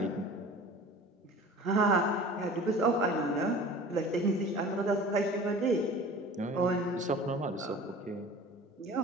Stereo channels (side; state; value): both; normal; correlation 0.41